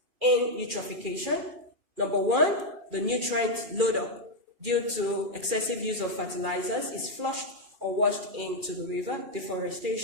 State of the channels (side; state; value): left; late; 2.4 ms